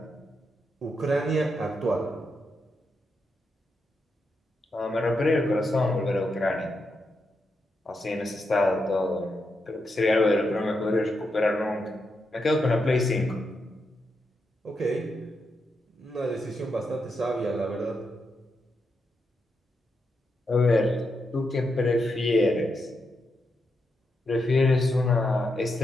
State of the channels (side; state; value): both; normal; correlation 0.84